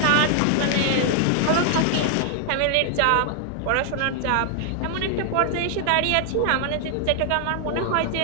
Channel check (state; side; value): different; both; correlation 0.00